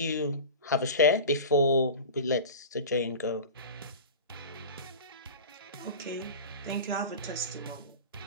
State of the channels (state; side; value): inverted; both; correlation -0.32